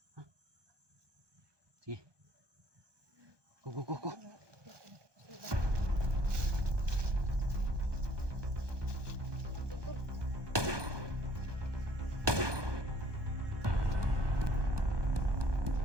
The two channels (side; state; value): left; late; 1.2 ms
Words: Ha? Sige. Go, go, go, go.